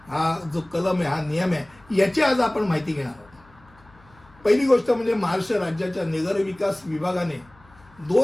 हा जो कलम आहे, हा नियम आहे, याची आज आपण माहिती घेणार आहोत. पहिली गोष्ट म्हणजे महाराष्ट्र राज्याच्या नगर विकास विभागाने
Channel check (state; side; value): noise; left; hum, 27 dB below the sound